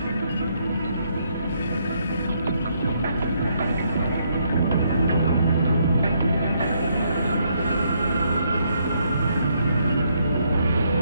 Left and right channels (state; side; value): inverted; both; correlation -0.73